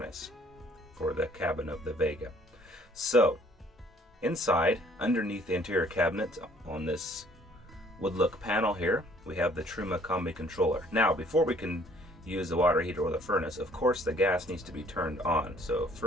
for the cabin of the Vega. So, inside, underneath the interior cabinet on this wood look panel here, we have the Truma Combi controller. Now, before we can use the water heater or the furnace, of course the gas needs to be turned on. So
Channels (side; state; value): both; normal; correlation 0.59